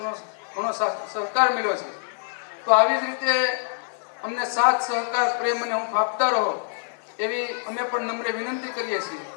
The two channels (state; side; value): silent; right; 62 dB below the other